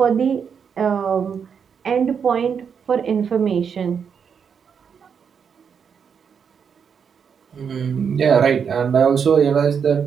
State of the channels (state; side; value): quieter; left; 6.9 dB